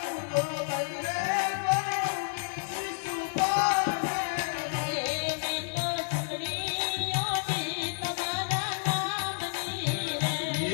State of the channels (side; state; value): right; silent; digital silence